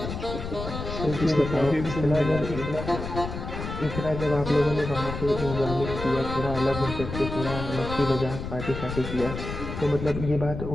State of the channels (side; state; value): left; noise; rumble, 7 dB below the sound